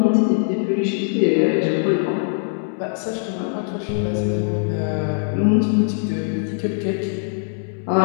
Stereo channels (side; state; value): right; silent; 65 dB below the other